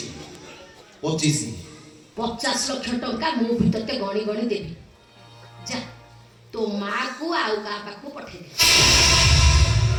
25 ଲକ୍ଷ ଟଙ୍କା ମୁଁ ବି ତତେ ଗଣି ଗଣି ଦେବି। ଯା ତୋ ମାଁ କୁ ଆଉ କାହା ପାଖକୁ ପଠେଇଦେ।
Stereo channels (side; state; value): both; identical; correlation 1.00